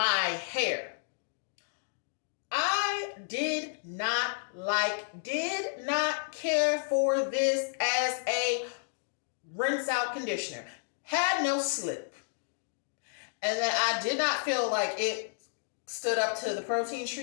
I did not care for this as a rinse out conditioner. Had no slip. And then I did not feel like it stood up to the protein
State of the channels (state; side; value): silent; right; digital silence